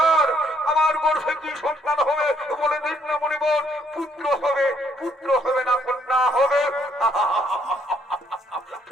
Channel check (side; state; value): both; normal; correlation 0.68